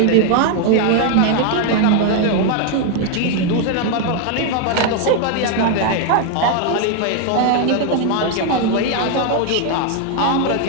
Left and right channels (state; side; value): different; both; correlation 0.01